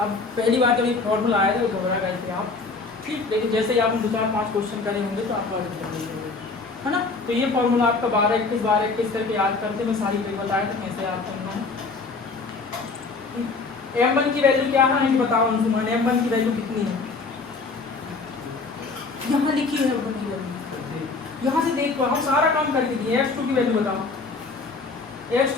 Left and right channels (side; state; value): right; quieter; 4.1 dB